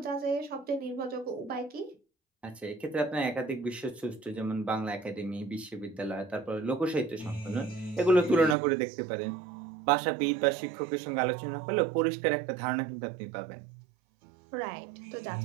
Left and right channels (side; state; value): left; drops out; at 8.6 s